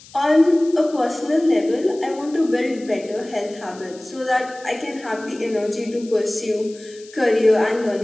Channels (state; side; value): noise; left; hiss, 22 dB below the sound